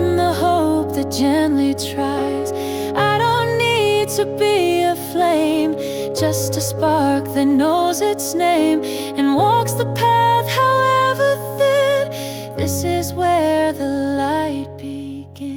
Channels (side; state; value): both; identical; correlation 1.00